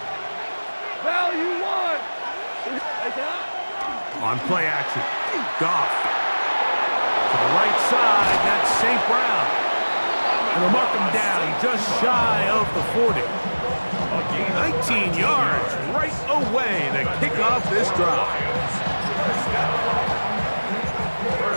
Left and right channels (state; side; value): inverted; both; correlation -1.00